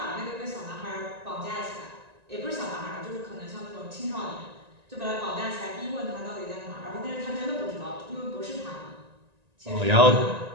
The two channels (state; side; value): late; left; 1.9 ms